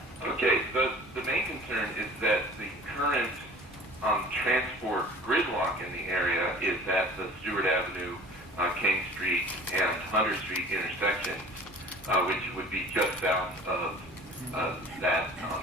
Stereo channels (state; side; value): normal; both; correlation 0.45